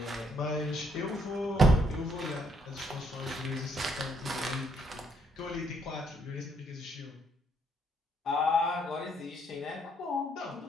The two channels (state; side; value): normal; both; correlation 0.70